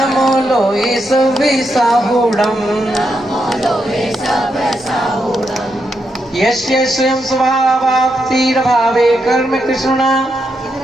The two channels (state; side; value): normal; both; correlation 0.82